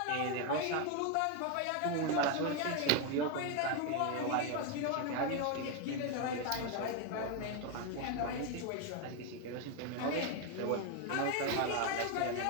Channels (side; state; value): both; different; correlation 0.01